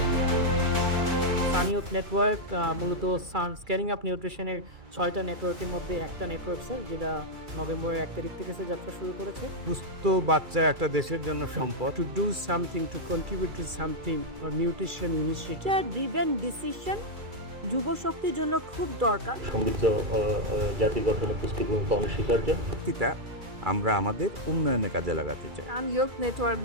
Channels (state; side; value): late; left; 2.3 ms